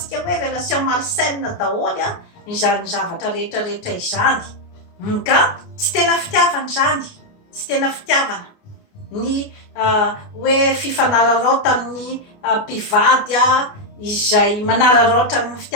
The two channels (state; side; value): late; right; 29 ms